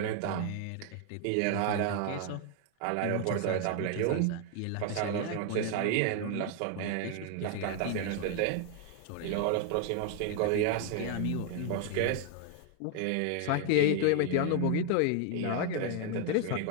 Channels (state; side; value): different; both; correlation 0.00